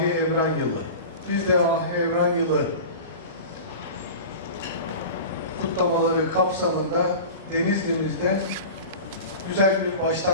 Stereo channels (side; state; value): both; inverted; correlation -0.33